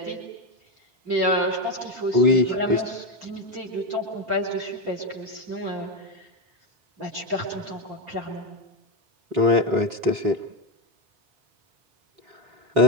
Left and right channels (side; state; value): left; late; 3.6 ms